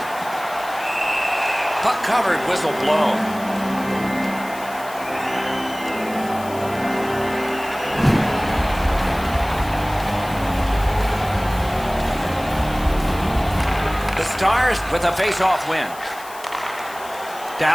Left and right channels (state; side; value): noise; left; hiss, 17 dB below the sound